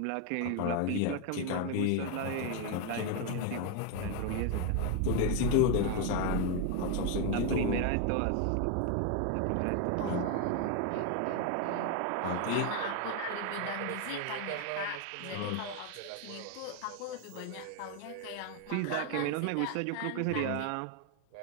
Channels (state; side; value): different; both; correlation 0.01